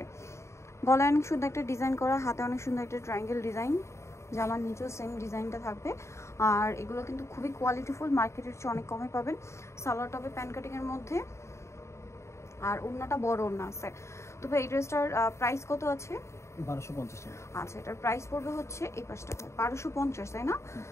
গলায় অনেক সুন্দর একটা ডিজাইন করা, হাতে অনেক সুন্দর একটা ট্রায়াঙ্গেল ডিজাইন, জামার নিচেও সেম ডিজাইনটা থাকবে। আর এগুলো কিন্তু খুবই কোয়ালিটিফুল, মার্কেটের চেয়ে অনেক কমে পাবেন। সালোয়ার টপে প্যান কাটিংয়ের মধ্যে, আর ওড়নাটা বড় ওড়না আছে। তো ভাই এই ড্রেসটার প্রাইস কত আছে? 1250 টাকা। আচ্ছা, এটার প্রাইস পড়বে হচ্ছে এই পাশটা 1250, তাই না?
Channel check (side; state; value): right; late; 0.14 ms